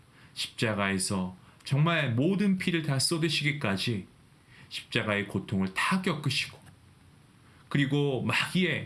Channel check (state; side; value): identical; both; correlation 1.00